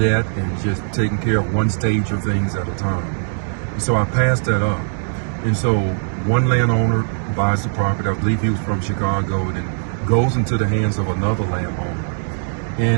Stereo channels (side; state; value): left; silent; digital silence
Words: and just taking care of one stage of things at a time. And so I passed that up. And so one landowner buys the property, I believe he was from Chicago, and then goes into the hands of another landowner.